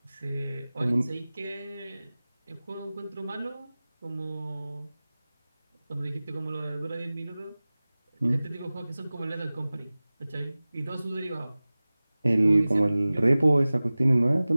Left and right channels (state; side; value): inverted; both; correlation -0.98